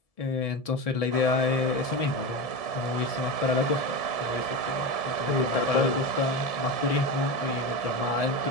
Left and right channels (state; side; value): late; right; 1.7 ms